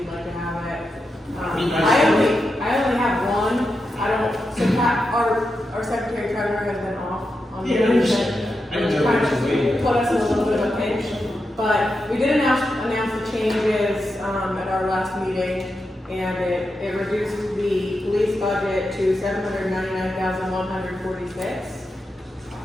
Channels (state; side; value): normal; both; correlation 0.88